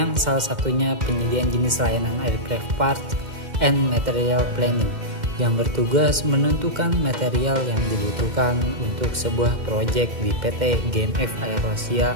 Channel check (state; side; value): late; left; 2.1 ms